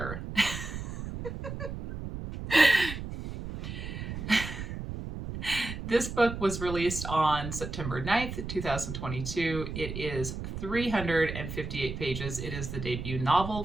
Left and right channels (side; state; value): right; noise; rumble, 7 dB below the sound